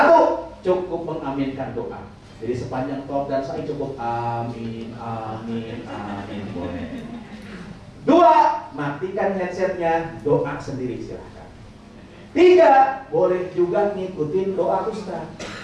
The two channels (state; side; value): identical; both; correlation 1.00